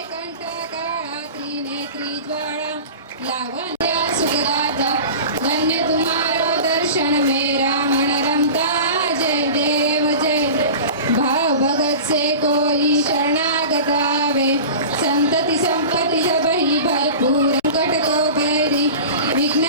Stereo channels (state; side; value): inverted; both; correlation -0.35